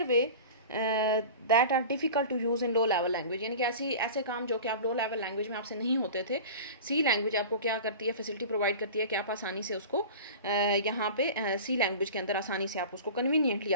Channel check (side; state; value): both; inverted; correlation -0.36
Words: way that are difficult to use in low level language. यानी कि ऐसे काम जो कि आप लो लेवल लैंग्वेज में आपसे नहीं होते थे, सी लैंग्वेज आपको क्या करती है, फैसिलिटी प्रोवाइड करती है कि आप आसानी से उसको यहाँ पे सी लैंग्वेज के अंदर आसानी से आप उसको कन्वीनियंटली